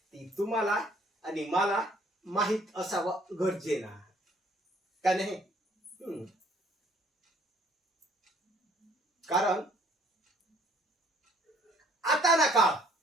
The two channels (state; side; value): normal; both; correlation 0.60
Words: तुम्हाला आणि मला माहित असावं गरजेनं का नाही? कारण आता ना काळ,